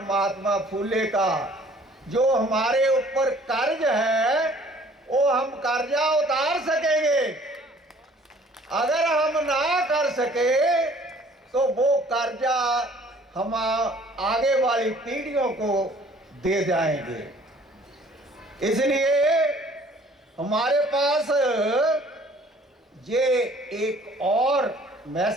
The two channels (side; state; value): both; normal; correlation 0.55